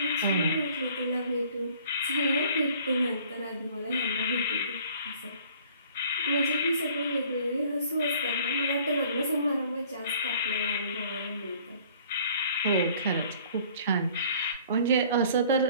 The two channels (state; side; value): inverted; both; correlation -0.54